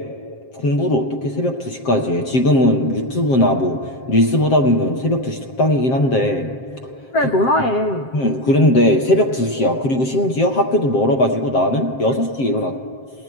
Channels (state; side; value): late; right; 7.6 ms